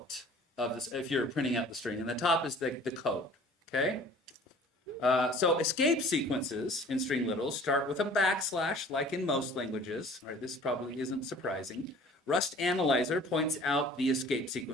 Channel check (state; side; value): normal; both; correlation 0.49